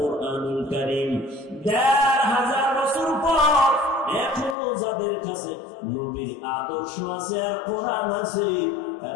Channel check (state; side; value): drops out; right; at 4.5 s